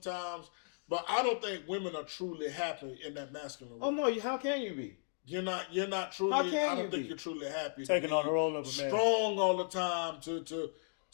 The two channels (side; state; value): right; silent; digital silence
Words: but I don't think women are truly happy in that masculine way. Oh no, how can you be? You're not truly. I don't think you're truly happy. Taking on the role of a man. Strong all the time to